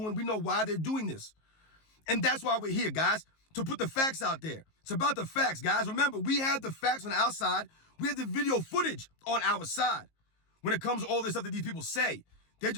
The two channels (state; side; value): late; right; 19 ms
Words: We know why they're doing this. And that's why we're here, guys, to put the facts out there. It's about the facts, guys. Remember, we have the facts on our side. We have the video footage on our side. When it comes to all this stuff that these people say, they're